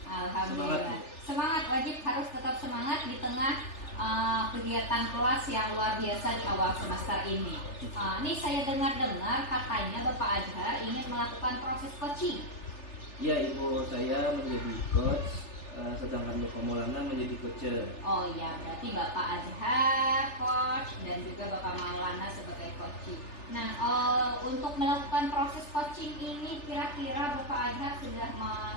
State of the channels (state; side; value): late; right; 3.4 ms